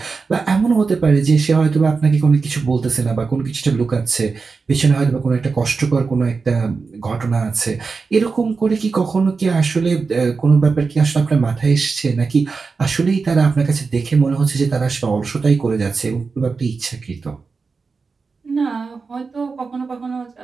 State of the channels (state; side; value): quieter; left; 4.6 dB